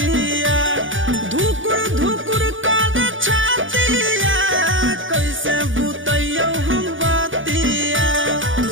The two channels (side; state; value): left; late; 0.57 ms